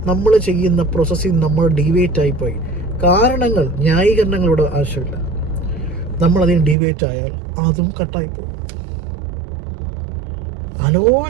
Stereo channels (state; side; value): drops out; left; at 6.8 s